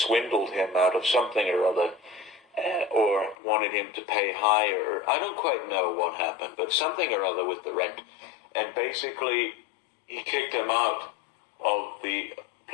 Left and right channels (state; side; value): drops out; right; at 3.4 s